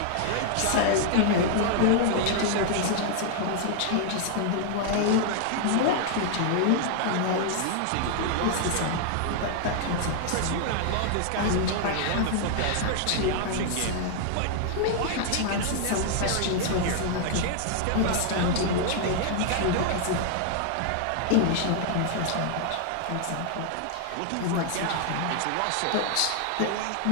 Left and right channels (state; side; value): different; both; correlation 0.00